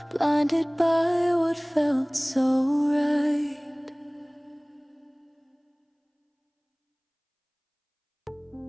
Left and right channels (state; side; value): identical; both; correlation 1.00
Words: blinded by what felt so right.